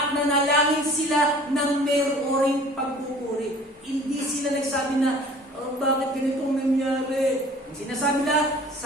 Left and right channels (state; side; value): normal; both; correlation 0.48